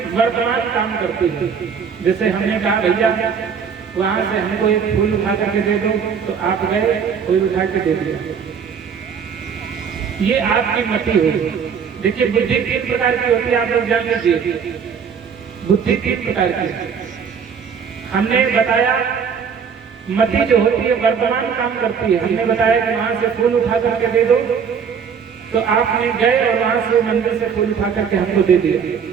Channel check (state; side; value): quieter; left; 6.7 dB